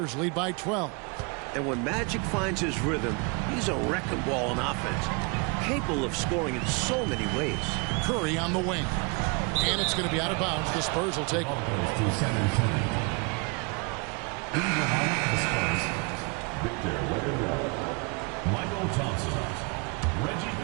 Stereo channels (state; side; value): quieter; left; 31.3 dB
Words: lead by 12. And when Magic finds his rhythm, he's a wrecking ball on offense. Capable of scoring in so many ways. Curry on the wing. And it's going to be out of bounds. The Spurs will take it. Goes to San Antonio. In the lineup for the Spurs, Victor Wembanyama, Michael Thompson, Reggie